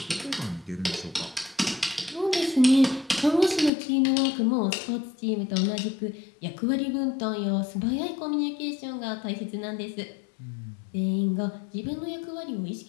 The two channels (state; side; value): drops out; right; at 3.7 s